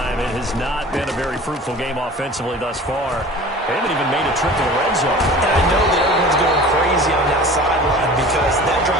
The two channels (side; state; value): both; normal; correlation 0.41